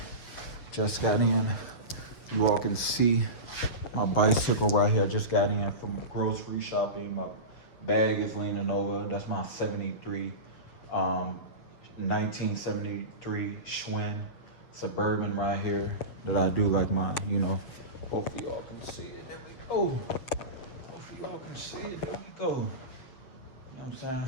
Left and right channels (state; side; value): late; right; 7.7 ms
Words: You all can see my bicycle right here. Just got in from grocery shopping. My bag is leaning over. That's my 1973 Schwinn Suburban right here that I do like my, hopefully y'all can see it. There we go. Hopefully y'all can see it. There we go. You know what I'm